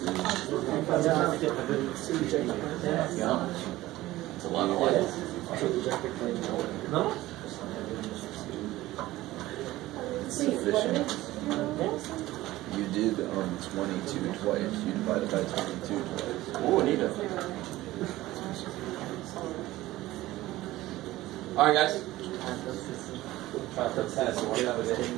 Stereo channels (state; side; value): quieter; left; 16.9 dB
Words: It's a lot of light. No? It's sufficient. You did 22 twice. You divided by 22 twice. Oh, neat. Alright, guys. Try to put tennis away.